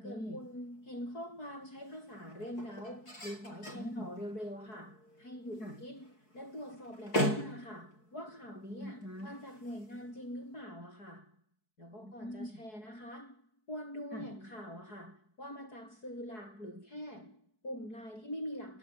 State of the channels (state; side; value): late; right; 4.6 ms